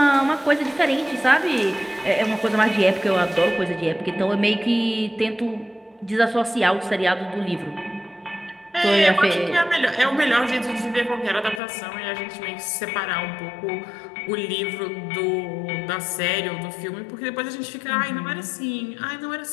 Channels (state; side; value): drops out; right; at 11.6 s